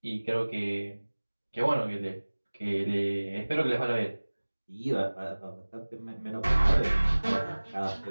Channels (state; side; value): inverted; both; correlation -1.00